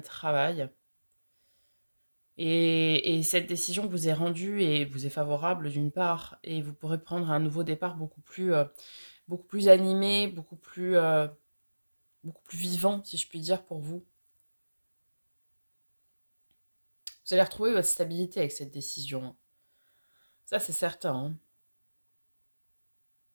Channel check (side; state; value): both; inverted; correlation -1.00